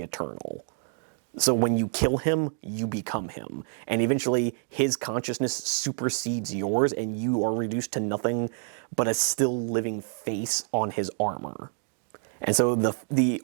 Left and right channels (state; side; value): silent; left; 60 dB below the other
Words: Eternal. So when you kill him, you become him. And eventually, his consciousness supersedes yours, and you are reduced to nothing but a still living face on his armor. And so the